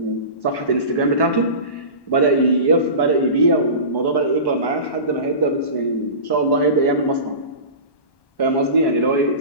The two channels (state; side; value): late; right; 1.1 ms